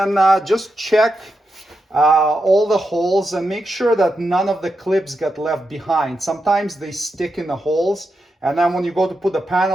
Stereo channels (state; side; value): normal; both; correlation 0.87